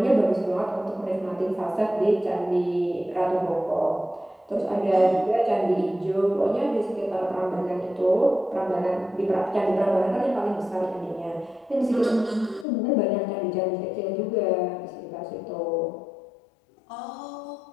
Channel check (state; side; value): drops out; right; at 12.7 s